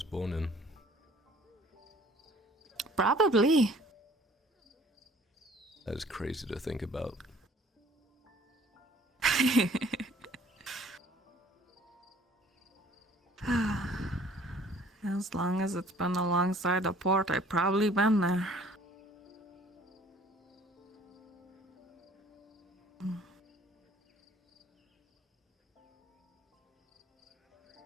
born in. Probably. That is crazy to think about. As long as it's been alongside a port, I've probably been there.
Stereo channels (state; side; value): normal; both; correlation 0.54